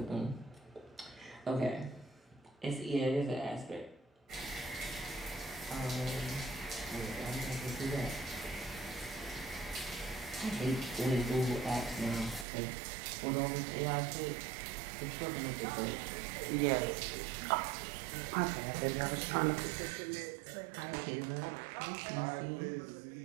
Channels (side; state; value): left; drops out; at 12.5 s